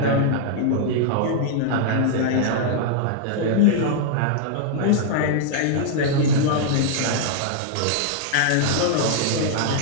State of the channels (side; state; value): both; different; correlation -0.01